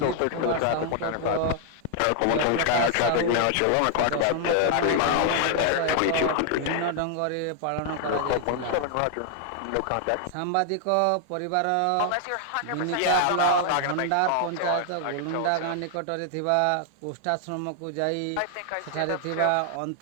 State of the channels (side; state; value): both; different; correlation 0.00